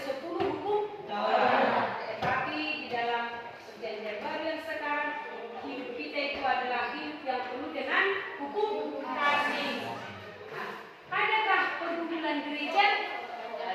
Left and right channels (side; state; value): both; identical; correlation 1.00